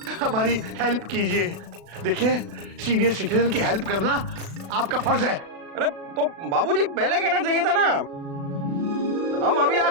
हमारी हेल्प कीजिए। देखिए, सीनियर सिटीजन की हेल्प करना आपका फर्ज है। अरे तो बाबूजी पहले कहना चाहिए था ना। हम अभी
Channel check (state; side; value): late; left; 36 ms